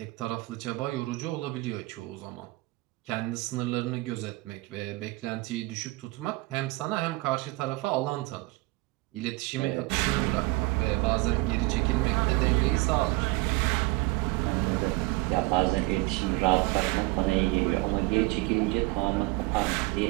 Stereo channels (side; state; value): left; quieter; 22.7 dB